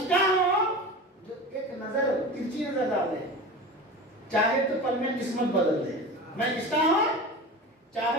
کا ہوں جو ایک نظر ترچی نظر ڈال دے، چاہے تو پل میں قسمت بدل دے. میں کس کا ہوں؟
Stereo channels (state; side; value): normal; both; correlation 0.31